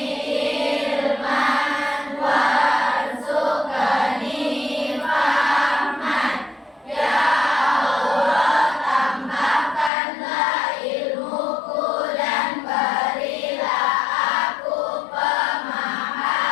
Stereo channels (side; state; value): right; drops out; at 9.9 s